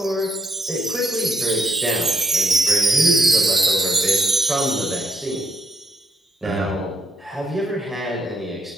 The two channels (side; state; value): both; normal; correlation 0.72